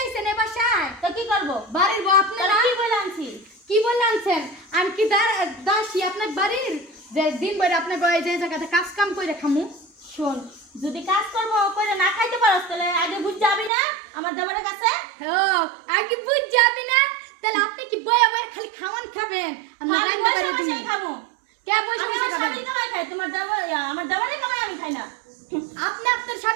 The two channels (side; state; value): left; drops out; at 13.7 s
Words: এ বাসায় তো কি করব বাড়ির বউ আপনারা কি বলে আনছি কি বলে আনছেন আমি কি দাসী আপনার বাড়ির যে দিন বইরা আপনি গয়ে যে জায়গাতে কাজ কাম কইরা খামু শুন যদি কাজ করব কইরা না খাইতে পারছ তাহলে আগে বুঝ যাবি না আমার দাবারের কাছে ও আগে বুঝ যাবি না তাহলে আপনি কি বইয়া বইয়া খালি খাওয়ান খাবেন আমি রান্না করে দিই খাবো কে পয়সা আমার স্বামী কামাই খায় তোমার দাবার আমার দাবারে কামাই আমি খাই না আপনি আপনার